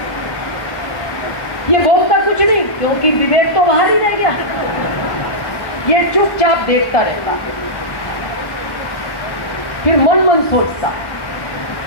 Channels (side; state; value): right; late; 1.1 ms